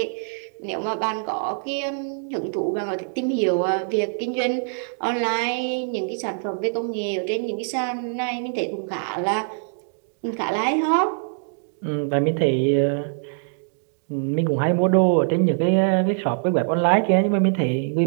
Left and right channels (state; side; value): silent; left; digital silence